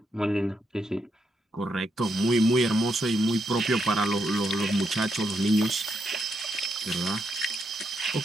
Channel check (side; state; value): both; normal; correlation 0.80